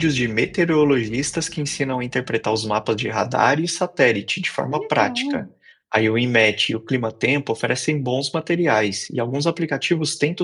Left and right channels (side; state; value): both; identical; correlation 1.00